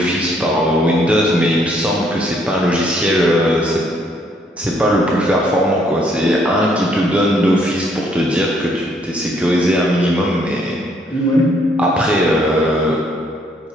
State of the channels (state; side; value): normal; both; correlation 0.68